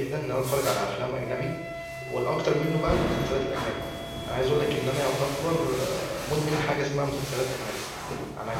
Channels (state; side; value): identical; both; correlation 1.00